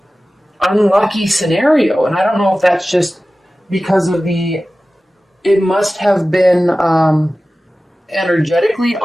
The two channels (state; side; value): normal; both; correlation 0.96